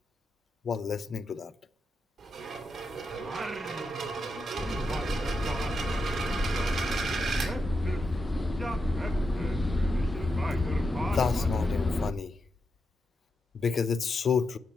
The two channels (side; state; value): both; normal; correlation 0.86